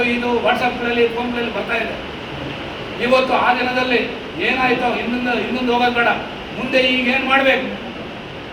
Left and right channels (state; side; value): identical; both; correlation 1.00